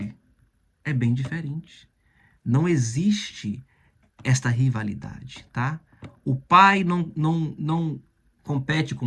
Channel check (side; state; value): both; identical; correlation 1.00